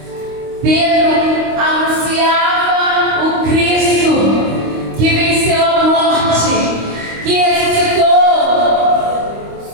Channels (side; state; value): left; late; 25 ms